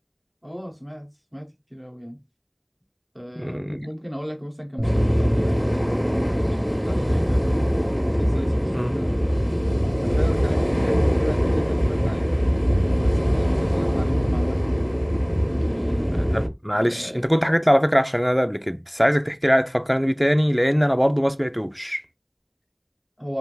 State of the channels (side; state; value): both; identical; correlation 1.00